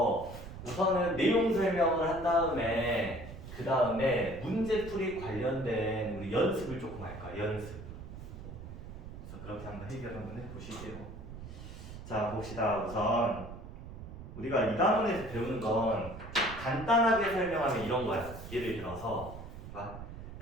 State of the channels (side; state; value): right; noise; rumble, 12 dB below the sound